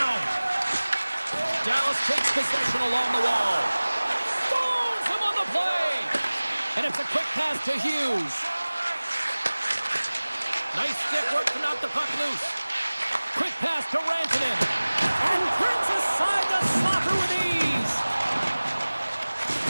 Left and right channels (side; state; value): both; inverted; correlation -1.00